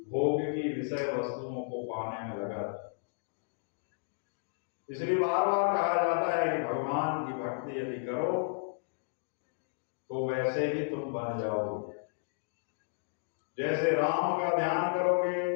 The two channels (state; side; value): silent; right; digital silence